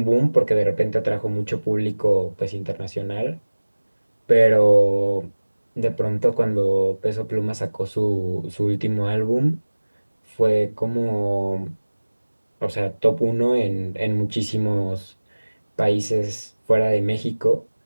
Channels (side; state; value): both; inverted; correlation -1.00